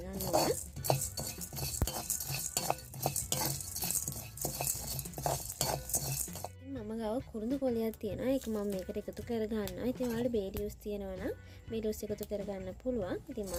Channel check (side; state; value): both; identical; correlation 1.00